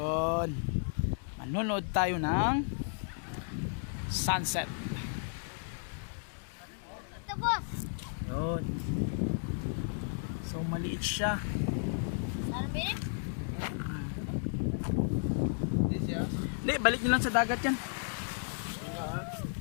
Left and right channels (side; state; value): right; silent; digital silence